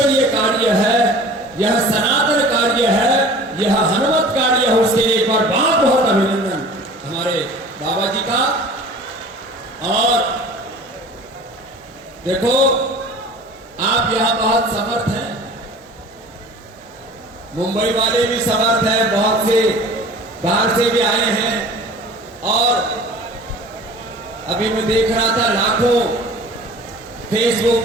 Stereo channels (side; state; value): both; normal; correlation 0.43